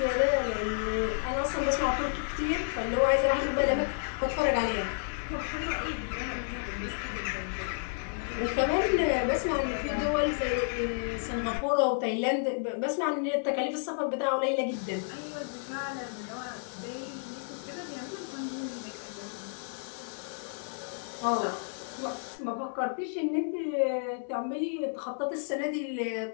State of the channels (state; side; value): silent; right; 57 dB below the other